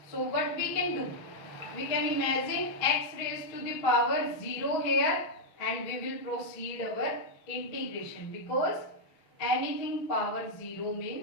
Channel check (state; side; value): late; right; 6.2 ms